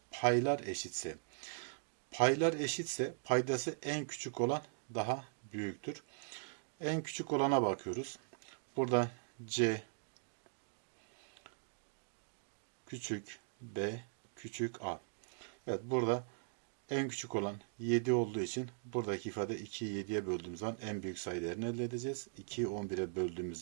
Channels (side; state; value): left; silent; digital silence